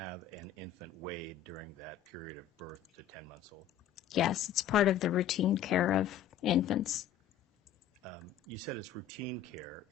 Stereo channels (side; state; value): right; quieter; 9.6 dB